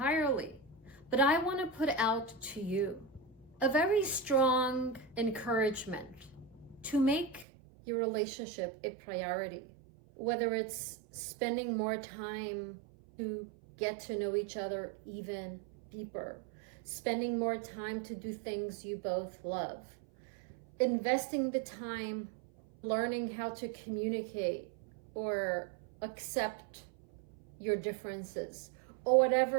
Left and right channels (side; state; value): left; drops out; at 7.5 s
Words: But I want to put out to you a very strong encouragement to make your relationship a priority, whether it's spending more time to get to know each other even deeper, spending more time to do things you both love, investing the time learning how to communicate or accept your differences, or